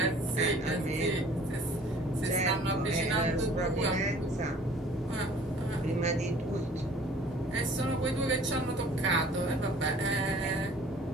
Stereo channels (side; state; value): both; normal; correlation 0.51